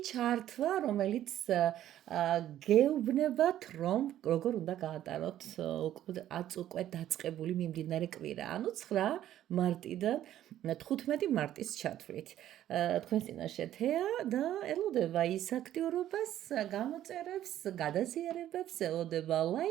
ჩართვა, რომელიც გეუბნებათ, რომ როგორ უნდა გაატაროთ უკვე დაწყებული მიმდინარე კვირა, ანუ 9 მარტიდან 15 მარტის ჩათვლით. თქვენს წინაშე თეა და ელოდება ის აქტიურობას, გამოწერებს, გადაზიარებებს, ელოდება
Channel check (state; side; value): quieter; left; 12.2 dB